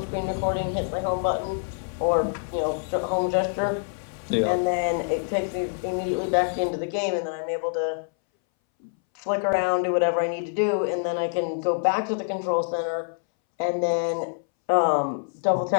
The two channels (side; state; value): right; silent; 61 dB below the other